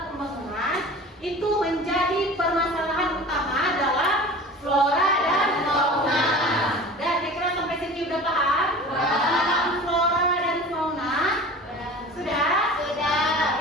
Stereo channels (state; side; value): normal; both; correlation 0.39